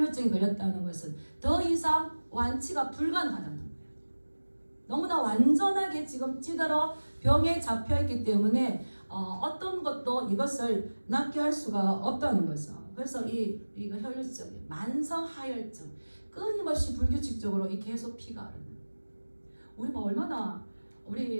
걸렸다는 것은 더 이상 완치가 불가능하다는 거예요. 너무나 완전하게 지금 찌들어 병에 잡혀있기 때문에 어떤 것도 이것을 낫게 할 수가 없다는 거죠. 그래서 이거 혈류증, 만성 하혈증, 끊임없이 불규칙적으로 이 계속 피가 흐르는.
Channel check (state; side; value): inverted; both; correlation -1.00